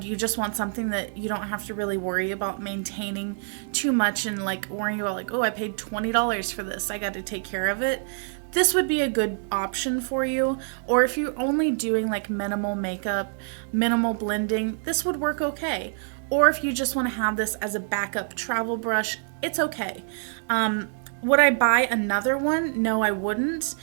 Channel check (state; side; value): silent; left; 61 dB below the other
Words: you just want something that you don't have to really worry about maintaining too much and like worrying about like, oh, I paid $20 for this, I got to take care of it, this would be a good option for you. Or if you're only doing like minimal makeup, minimal blending, this would work okay. Or if you just want to have this as a backup travel brush, it's okay. Would I buy another one? No, I wouldn't,